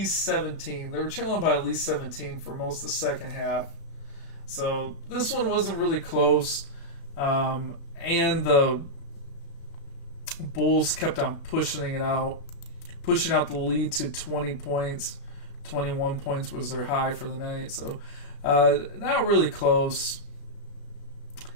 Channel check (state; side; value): late; right; 35 ms